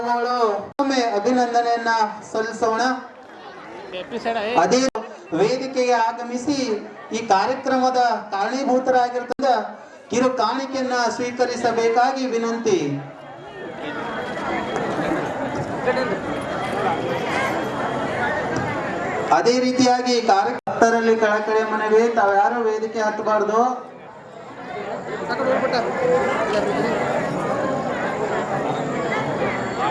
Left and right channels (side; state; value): both; identical; correlation 1.00